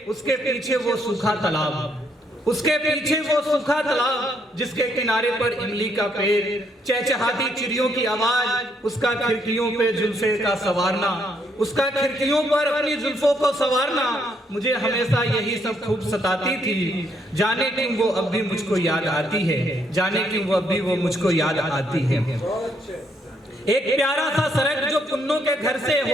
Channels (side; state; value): both; normal; correlation 0.72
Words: उसके पीछे वो सूखा तालाब, उसके पीछे वो सूखा तालाब जिसके किनारे पर इमली का पेड़, चहचहाती चिड़ियों की आवाज, उसका खिड़कियों पे जुल्फे का संवारना, उसका खिड़कियों पर अपनी जुल्फों को संवारना। मुझे हमेशा यही सब खूब सताती थी। जाने क्यों वो अब भी मुझको याद आती है, जाने क्यों वो अब भी वो मुझको याद आती है। एक प्यारा सा सड़क जो पुन्नो के घर से